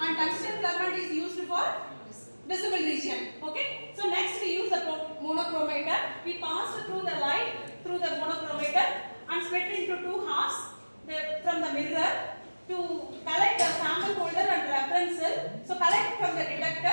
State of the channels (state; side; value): inverted; both; correlation -1.00